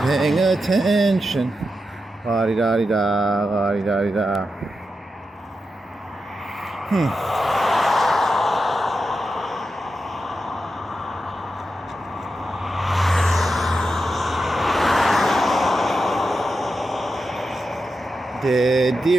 attention. La-di-da-di-da, la-di-da-di-da. Dead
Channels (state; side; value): normal; both; correlation 0.88